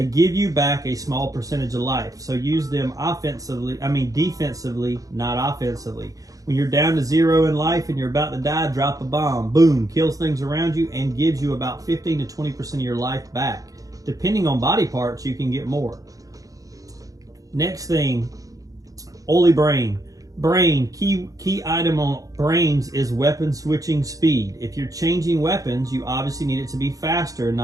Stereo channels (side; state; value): left; late; 0.17 ms